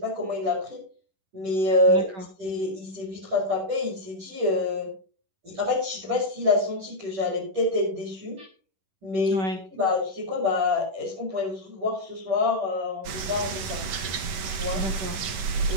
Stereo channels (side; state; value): left; late; 10 ms